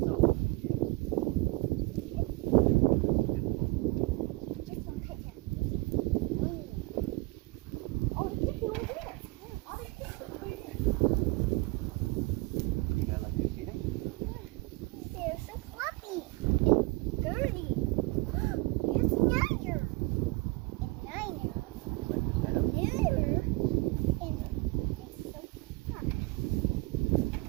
They're so fluffy, dirty. It's nicer.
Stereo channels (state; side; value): quieter; left; 24.2 dB